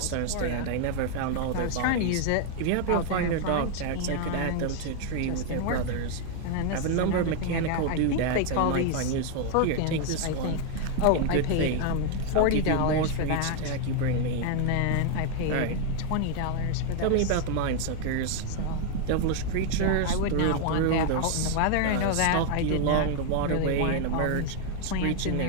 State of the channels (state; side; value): different; both; correlation 0.00